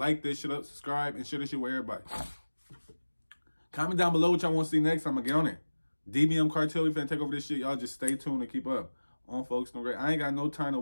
this shit up, subscribe, and share this shit with everybody. Comment down below what y'all want to see next. I'm gonna get on it. DBM Cartel, we finna take over this shit. Y'all just stay tuned and keep up. On folks, no great. I ain't got no time to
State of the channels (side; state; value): both; inverted; correlation -1.00